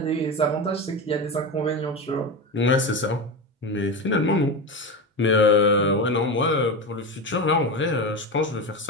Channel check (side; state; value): both; normal; correlation 0.20